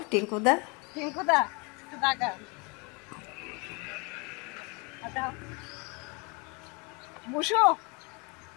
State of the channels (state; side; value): quieter; right; 30.2 dB